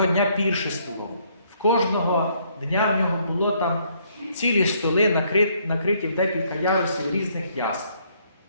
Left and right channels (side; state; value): both; inverted; correlation -0.68